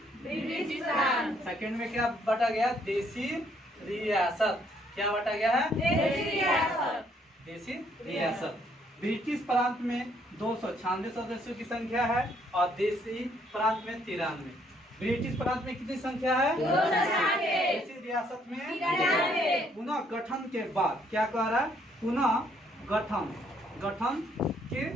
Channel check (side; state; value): both; normal; correlation 0.68